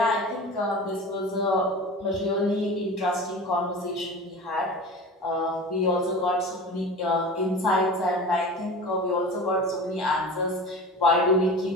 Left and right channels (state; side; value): normal; both; correlation 0.34